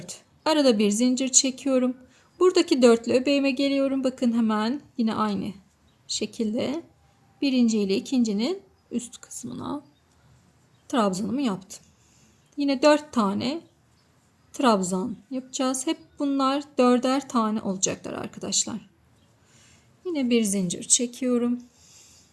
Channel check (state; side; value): identical; both; correlation 1.00